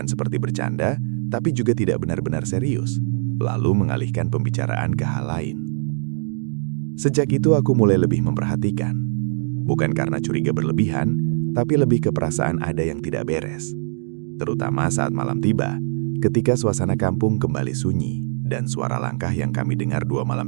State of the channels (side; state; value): left; silent; digital silence